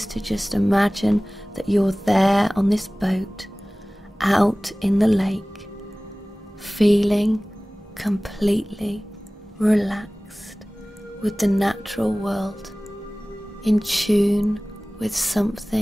to just imagine that you're there on this boat, out in the lake, feeling completely relaxed with the natural world, in tune with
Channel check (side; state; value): both; normal; correlation 0.98